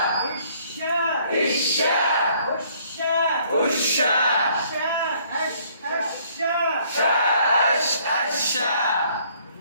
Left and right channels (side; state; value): both; inverted; correlation -0.62